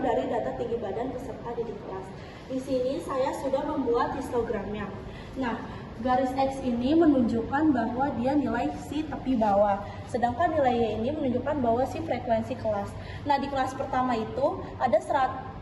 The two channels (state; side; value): identical; both; correlation 1.00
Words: dari data tinggi badan peserta didik kelas. Di sini saya sudah membuat histogramnya. Nah, garis X ini menunjukkan bahwa dia nilai si tepi bawah, sedangkan nilai Y ini menunjukkan bahwa si frekuensi kelas. Nah, di kelas pertama itu ada